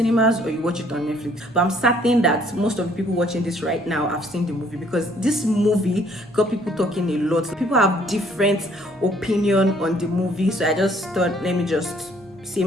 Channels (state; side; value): normal; both; correlation 0.62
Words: or you watch it on Netflix. But I'm certain that most of the people watching this right now have seen the movie because this movie got people talking a lot. People have different opinion on the movie. So I just thought, let me just say